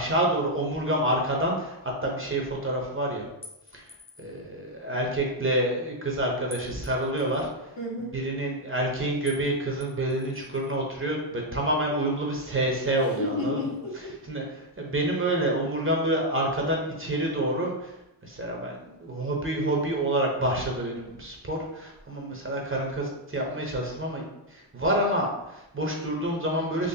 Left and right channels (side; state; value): both; normal; correlation 0.00